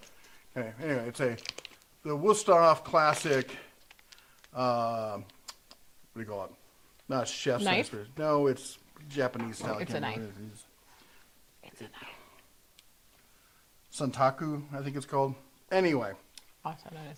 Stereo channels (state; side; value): identical; both; correlation 1.00